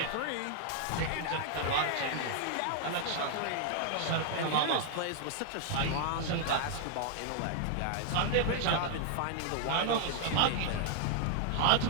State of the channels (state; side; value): different; both; correlation 0.00